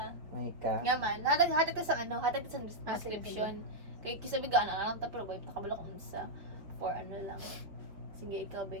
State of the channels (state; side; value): late; left; 4.6 ms